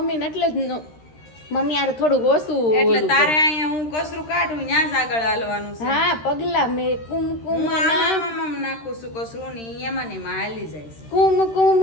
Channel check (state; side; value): late; right; 13 ms